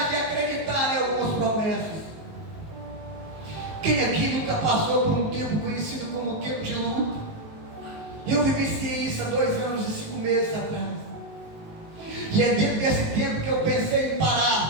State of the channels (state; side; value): late; left; 19 ms